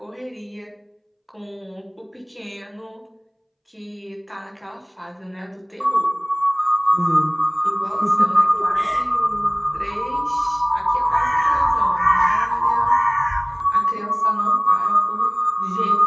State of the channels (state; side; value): identical; both; correlation 1.00